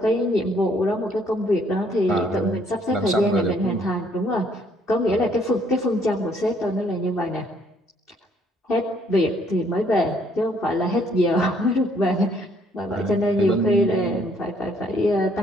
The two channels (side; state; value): both; normal; correlation 0.65